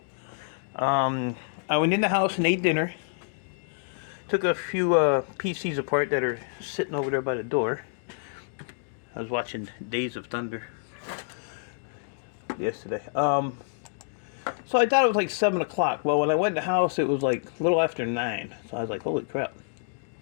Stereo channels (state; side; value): silent; right; digital silence